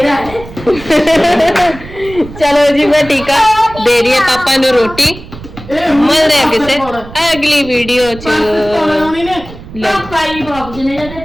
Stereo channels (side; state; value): right; noise; rumble, 15 dB below the sound